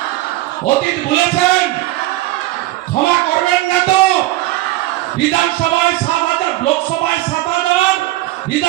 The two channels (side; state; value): left; quieter; 17.5 dB